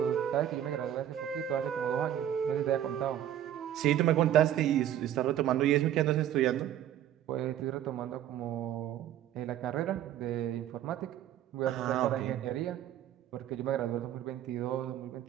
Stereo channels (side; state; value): left; quieter; 11.3 dB